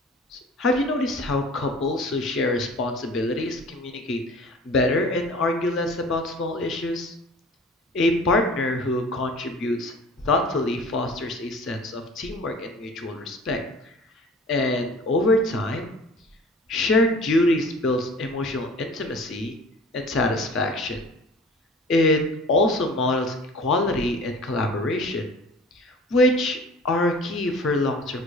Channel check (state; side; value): normal; both; correlation 0.44